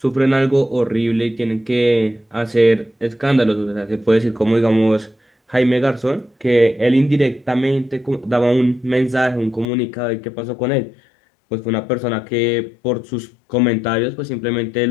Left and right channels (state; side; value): drops out; right; at 9.7 s